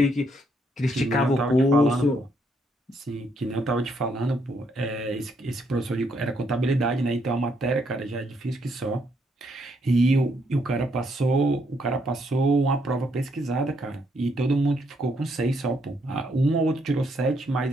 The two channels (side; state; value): both; normal; correlation 0.73